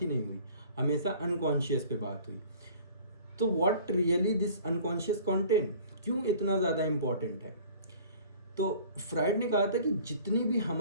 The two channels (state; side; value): inverted; both; correlation -0.48